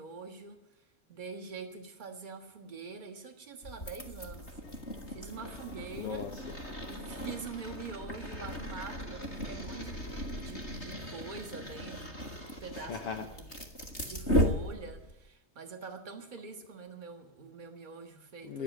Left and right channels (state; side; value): late; right; 3.2 ms